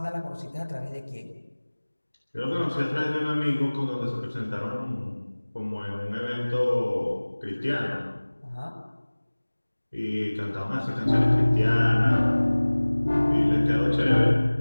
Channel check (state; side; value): inverted; both; correlation -1.00